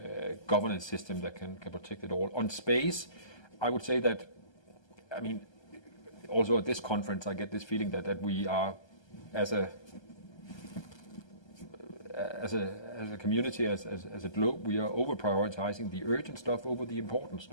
governance system that can protect it all. On space, I would say that, I mean, also at this conference, I get this feeling that we are, as a community, as a globe, we are over prioritizing the urgent stuff over the important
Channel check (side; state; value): right; late; 1.3 ms